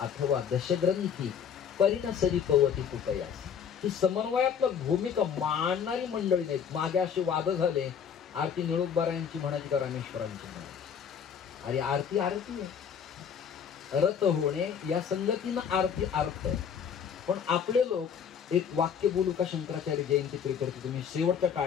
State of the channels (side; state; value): right; quieter; 7.5 dB